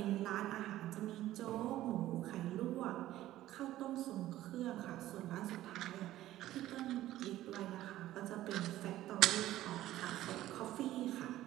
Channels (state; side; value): quieter; left; 14.5 dB